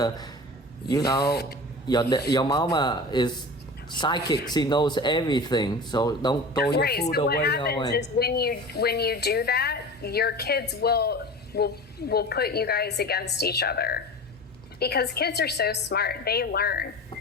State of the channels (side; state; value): both; normal; correlation 0.35